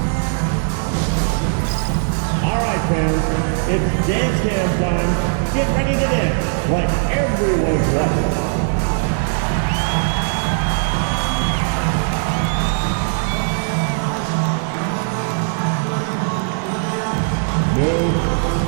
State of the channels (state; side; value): silent; left; 57 dB below the other